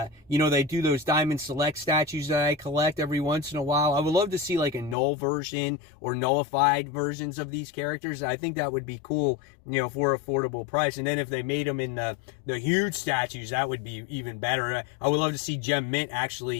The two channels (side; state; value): right; drops out; at 5.0 s